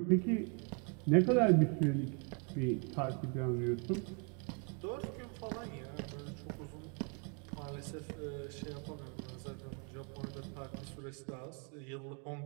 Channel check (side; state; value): left; quieter; 35.8 dB